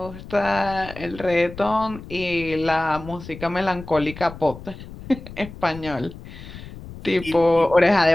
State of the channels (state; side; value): noise; left; rumble, 14 dB below the sound